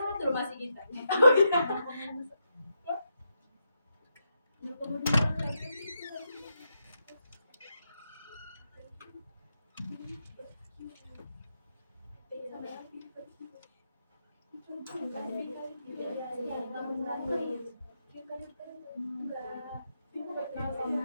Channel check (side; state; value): both; inverted; correlation -0.83